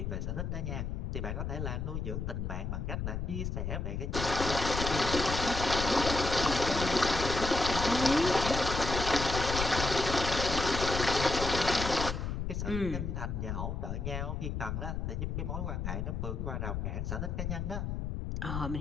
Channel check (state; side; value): noise; left; rumble, 3 dB below the sound